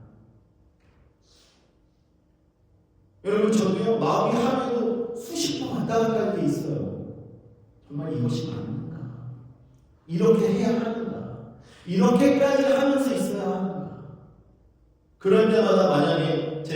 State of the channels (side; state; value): both; identical; correlation 1.00